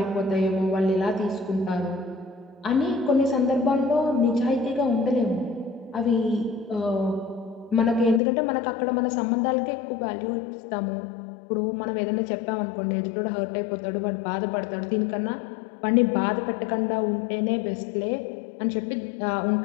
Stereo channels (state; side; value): drops out; right; at 8.2 s